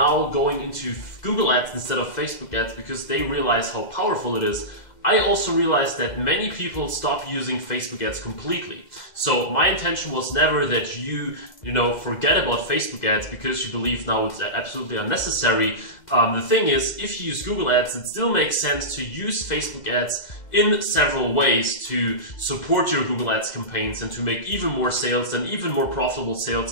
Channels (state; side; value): late; right; 2.0 ms